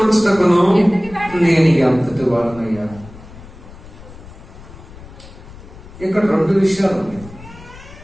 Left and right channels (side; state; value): left; noise; rumble, 18 dB below the sound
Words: వచ్చుటకును నేను ఎంతటి వాడనయ్యా. ఇక్కడ రెండు విషయాలు ఉన్నాయి.